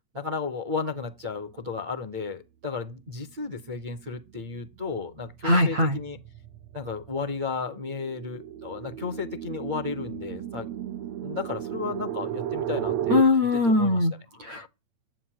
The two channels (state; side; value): late; left; 8.7 ms